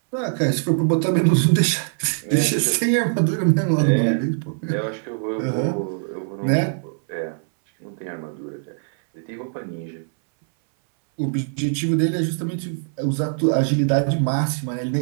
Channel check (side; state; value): left; silent; 64 dB below the other